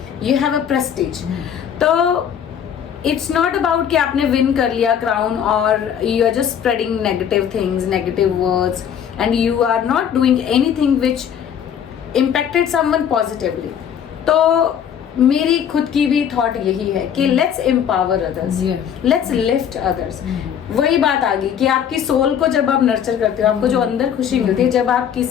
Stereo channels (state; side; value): quieter; right; 8.6 dB